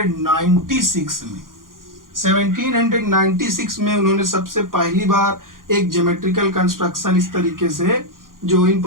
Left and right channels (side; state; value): left; late; 0.90 ms